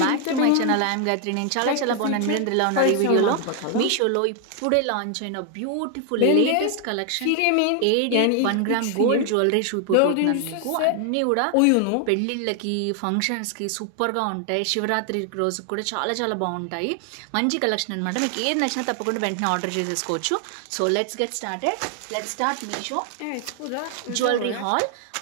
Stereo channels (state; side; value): different; both; correlation 0.00